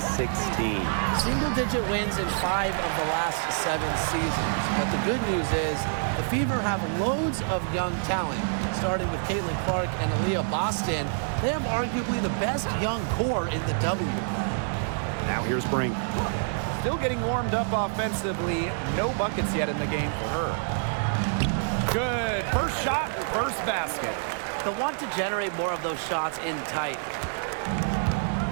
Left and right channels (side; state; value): left; silent; digital silence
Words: Single-digit wins in 5 of the last 7 seasons. But the good news is the Fever have loads of young talent, starting with Caitlin Clark and Aaliyah Boston. They have arguably the best young core in the W. Now here's Brink. Still getting warmed up offensively. No buckets yet in the game for her. Good. First shot, first basket. They'll want to generate more of those shots in tight.